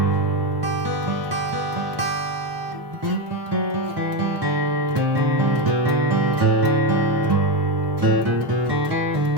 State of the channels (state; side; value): normal; both; correlation 0.12